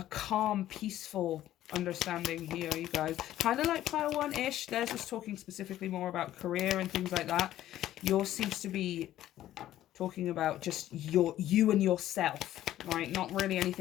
calm, peaceful understanding here, you guys. Kind of like Pile 1-ish. Theirs was talking specifically more about career and things like that. Yours seems to be talking about just you and yourself, right? Not really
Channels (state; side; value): quieter; right; 13.2 dB